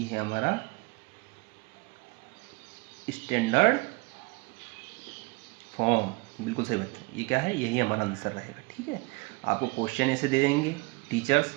है हमारा स्टैंडर्ड फॉर्म। बिल्कुल सही बच्चों, ये क्या है, यही हमारा आंसर रहेगा। ठीक है, आपको क्वेश्चन ऐसे दे देंगे टीचर्स,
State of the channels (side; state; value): left; quieter; 26.1 dB